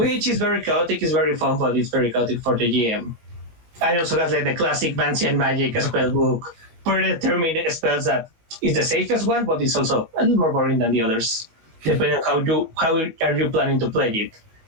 is very chaotic, it's very fun, but it's very chaotic for the GM. I also have like the classic Vancian magic spell book, predetermined spells that is the safest one, but it's also a little more boring than the others, depending on how are you planning to play it.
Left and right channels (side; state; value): left; late; 19 ms